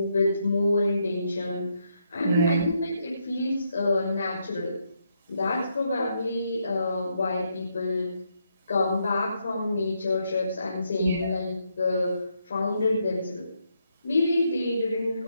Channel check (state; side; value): inverted; both; correlation -0.78